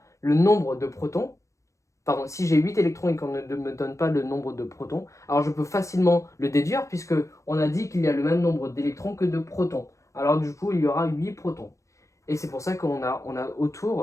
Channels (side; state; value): right; late; 0.15 ms